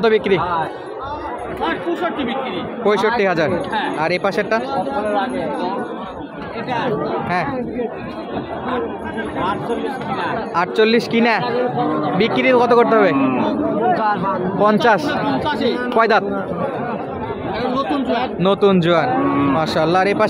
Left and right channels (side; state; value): both; identical; correlation 1.00